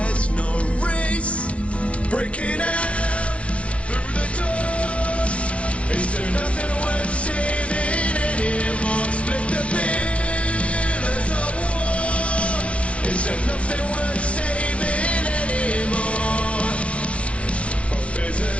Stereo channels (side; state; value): right; late; 0.062 ms